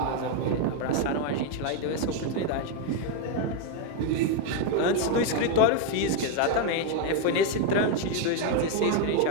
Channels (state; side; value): different; both; correlation 0.01